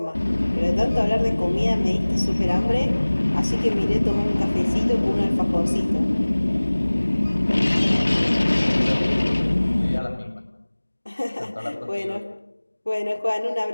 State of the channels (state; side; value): inverted; both; correlation -1.00